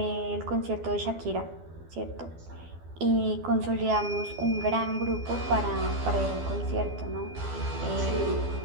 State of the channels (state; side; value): late; left; 12 ms